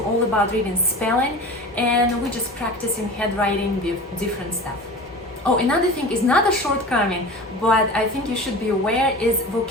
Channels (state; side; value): normal; both; correlation 0.35